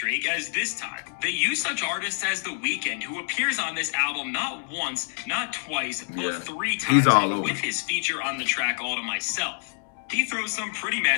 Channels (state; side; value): silent; right; 60 dB below the other